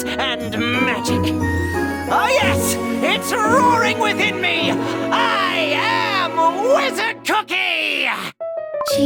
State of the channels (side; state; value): both; identical; correlation 1.00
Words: and magic. Oh yes, it's roaring within me. I am Wizard Cookie!